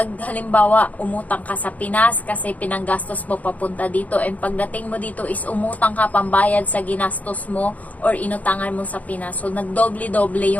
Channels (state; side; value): late; right; 0.074 ms